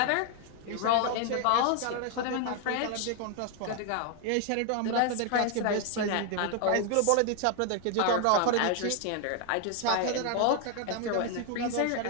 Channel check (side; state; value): both; different; correlation 0.00